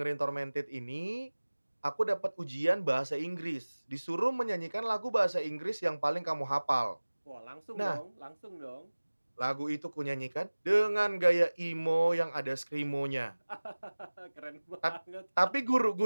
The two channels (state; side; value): inverted; both; correlation -1.00